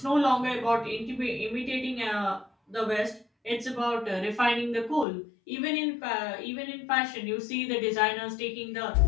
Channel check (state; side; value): drops out; right; at 5.1 s